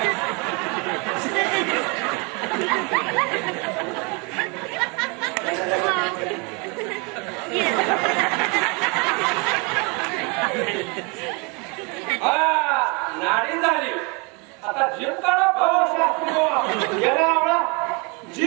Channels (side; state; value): left; quieter; 31.1 dB